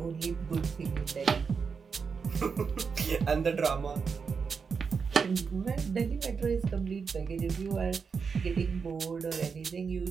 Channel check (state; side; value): quieter; left; 5.6 dB